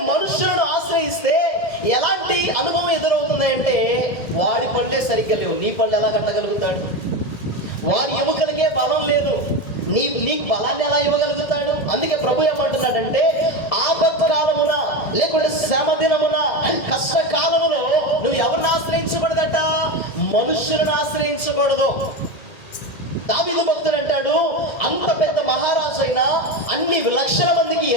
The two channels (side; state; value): right; late; 2.1 ms